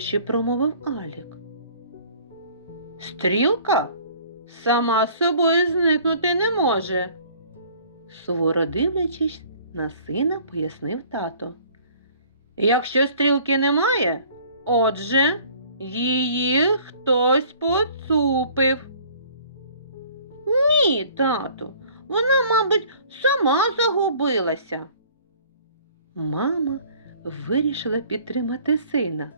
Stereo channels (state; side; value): inverted; both; correlation -0.53